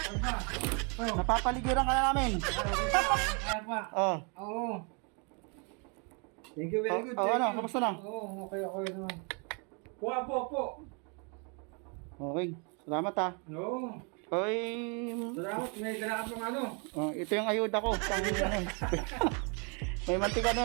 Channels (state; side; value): quieter; left; 35.2 dB